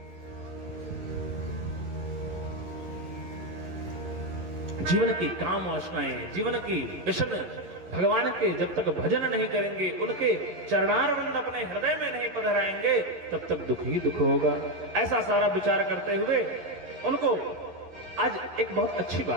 जीवन की काम वासनाएं, जीवन की व्यसन भगवान के जब तक भजन नहीं करेंगे, उनके चरणारविंद अपने हृदय में नहीं पधराएंगे, तब तक दुख ही दुख होगा। ऐसा सारा विचार करते हुए उनको आज एक बहुत अच्छी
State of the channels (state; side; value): late; left; 11 ms